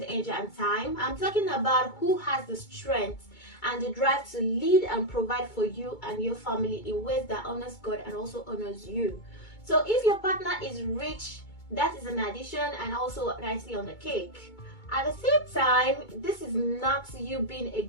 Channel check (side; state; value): right; late; 2.2 ms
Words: age and time. I'm talking about who has the strength and the drive to lead and provide for you and your family in ways that honors God and also honors you. So if your partner is rich, that is an addition and also nicely on the cake. At the same time, this is not you being a